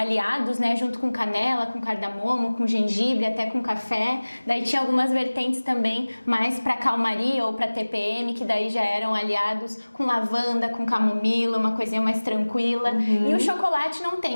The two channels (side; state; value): both; inverted; correlation -1.00